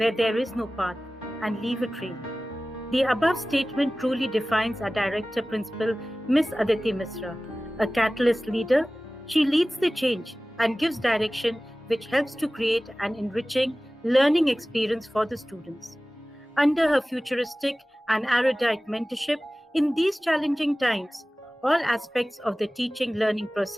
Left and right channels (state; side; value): normal; both; correlation 0.97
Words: there is no path and leave a trail. The above statement truly defines our director principal, Miss Aditi Misra. A catalyst leader, she leads the change and gives direction which helps to create an enriching learning experience for the students. Under her futuristic and erudite mentorship, in these challenging times, all aspects of the teaching learning